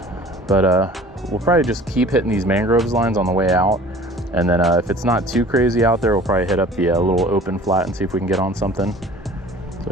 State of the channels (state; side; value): normal; both; correlation 0.47